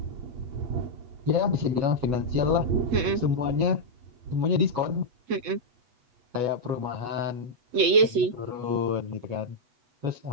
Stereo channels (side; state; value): left; late; 8.4 ms